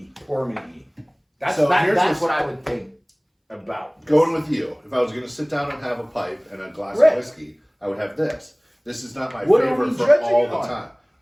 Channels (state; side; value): identical; both; correlation 1.00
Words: Pour me E. That's So here's that's this- what I would think about this. Going with you, if I was going to sit down and have a pipe and a glass Right. of whiskey, I would have this. This is not my What are favorite we for judging all it the on? time.